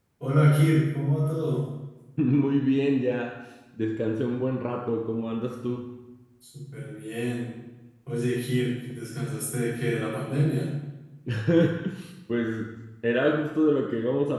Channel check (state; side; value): identical; both; correlation 1.00